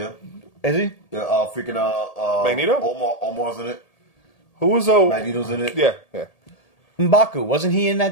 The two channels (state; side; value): late; right; 1.8 ms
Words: Is he? Yeah, freaking Magneto? Omar's in it. Who was Magneto's in it. Yeah. M'Baku, wasn't he in